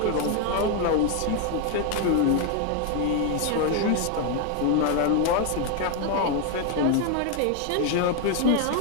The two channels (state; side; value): different; both; correlation 0.01